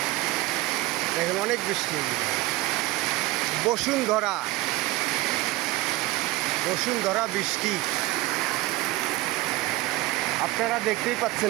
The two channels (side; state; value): left; quieter; 19.6 dB